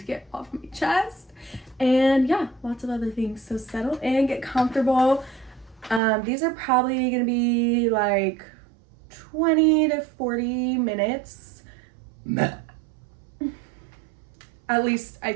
get off my chest. And yeah, lots of other things. So settle in, get comfortable. These are probably gonna be like 20 to 40 minutes. At least I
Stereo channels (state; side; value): drops out; left; at 6.0 s